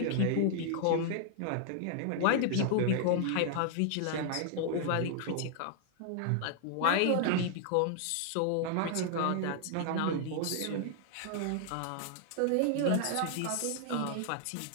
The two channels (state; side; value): different; both; correlation 0.00